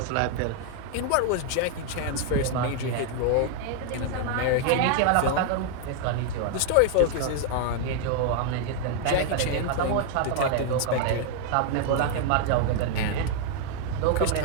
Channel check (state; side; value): different; both; correlation 0.00